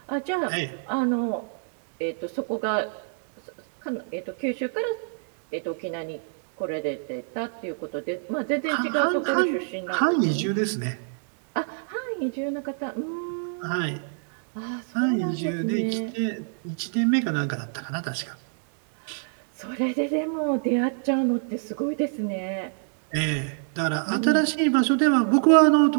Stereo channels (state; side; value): silent; left; digital silence